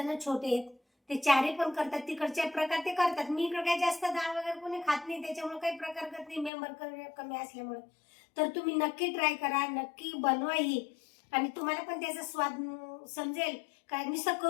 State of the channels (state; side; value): drops out; right; at 6.5 s